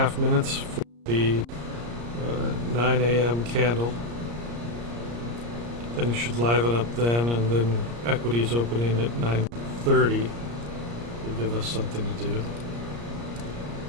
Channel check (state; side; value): late; left; 34 ms